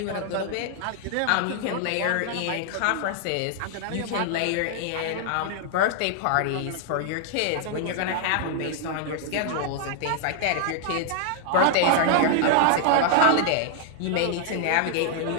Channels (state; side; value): different; both; correlation 0.00